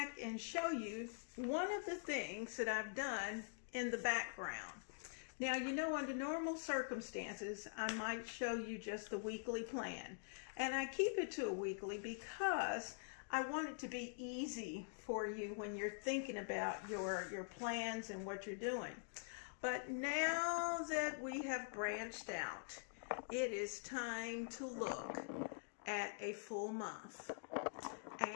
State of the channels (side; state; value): right; silent; digital silence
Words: and show you one of the things that I've done in the background. Now, you know, under normal circumstances, I might show you just the weekly plan. And I keep it to a weekly because I want it to be easy for you when you're thinking about your plans and what you're doing. But now that we have branched out, it is time to look at a full month.